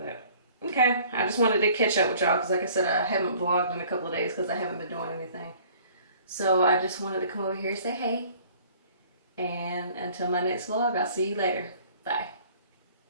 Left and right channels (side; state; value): both; inverted; correlation -0.53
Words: okay, I just wanted to catch up with y'all, because like I said, I haven't vlogged in a couple of days because I haven't been doing anything. So I just wanted to come over here and say hey. And until my next vlog, I'll see you later. Bye.